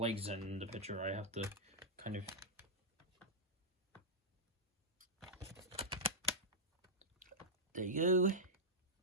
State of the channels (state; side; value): normal; both; correlation -0.10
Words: in the picture. I have to kind of... There you go.